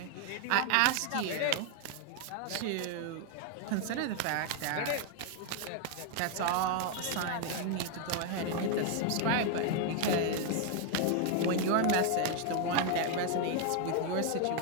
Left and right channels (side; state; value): both; different; correlation 0.00